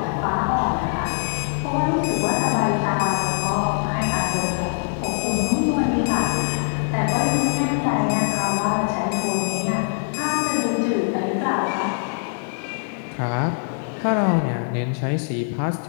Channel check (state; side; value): silent; right; 64 dB below the other